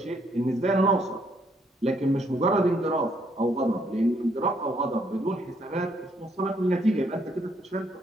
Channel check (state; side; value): normal; both; correlation 0.70